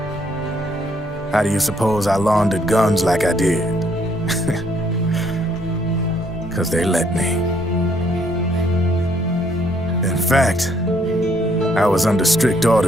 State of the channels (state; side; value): normal; both; correlation 0.68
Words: How do you suppose I laundered guns like I did? 'Cause they let me. In fact, I was under strict